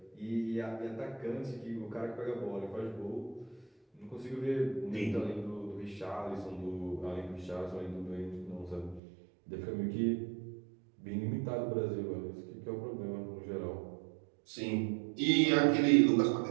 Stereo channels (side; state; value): left; drops out; at 9.0 s